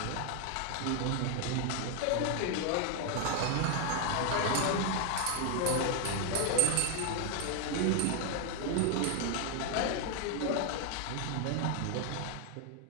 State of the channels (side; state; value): both; different; correlation 0.01